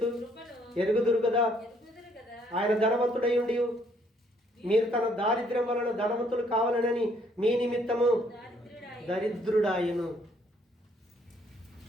ఎరుగుదురు కదా, ఆయన ధనవంతుడై ఉండి మీరు తన దారిద్ర్యం వలన ధనవంతులు కావాలనని మీ నిమిత్తము దరిద్రుడాయను.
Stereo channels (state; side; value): normal; both; correlation 0.66